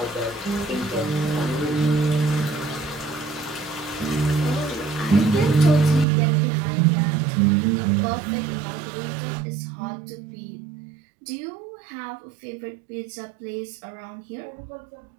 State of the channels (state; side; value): drops out; left; at 6.1 s